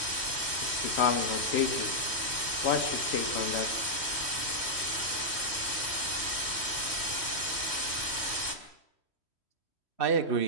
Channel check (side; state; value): right; late; 3.1 ms